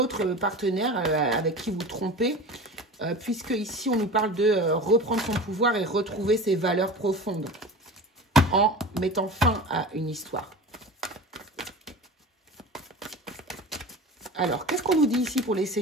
partenaire avec qui vous trompez, puisque ici, on nous parle de reprendre son pouvoir et retrouver ses valeurs profondes en mettant fin à une histoire. Alors, qu'est-ce qu'on nous dit ici pour les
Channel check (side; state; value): both; normal; correlation 0.34